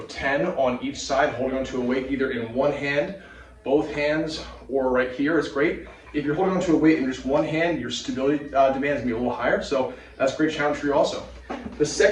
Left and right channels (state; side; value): identical; both; correlation 1.00